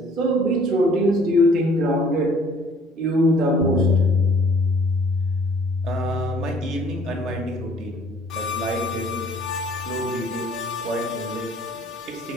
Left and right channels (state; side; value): normal; both; correlation 0.57